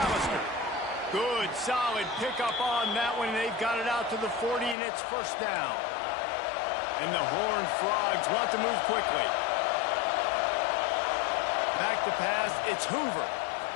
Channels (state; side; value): drops out; right; at 4.8 s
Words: Good, solid pickup on that one. They've got it out to the 40, and it's first down. And the Horned Frogs want to move quickly. Back to pass. It's Hoover.